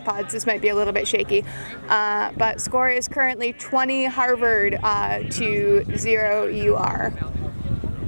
so this might be a little bit shaky. But score is currently 20 Harvard to 0 UR.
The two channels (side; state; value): both; inverted; correlation -1.00